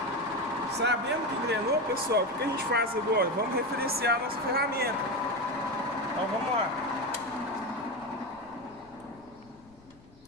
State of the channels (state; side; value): noise; left; rumble, 26 dB below the sound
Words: Sabendo que engrenou, pessoal, o que a gente faz agora? Vamos referenciar a nossa ferramenta. Então vamos lá.